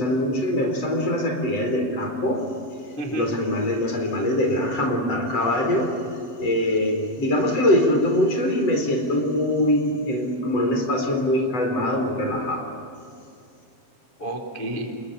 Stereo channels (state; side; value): late; right; 7.9 ms